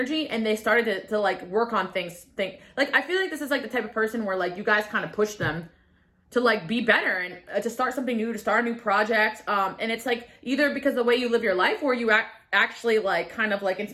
and they started to like work on things. Like, I feel like this is like the type of person where like you guys kind of push them to like be better and to start something new, to start a new project. And it's like either because of the way you live your life, or you actually like kind of like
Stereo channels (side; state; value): both; identical; correlation 1.00